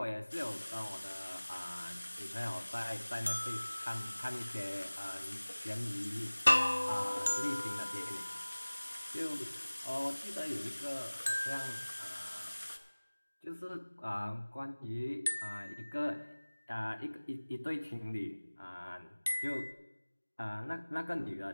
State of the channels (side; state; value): both; inverted; correlation -1.00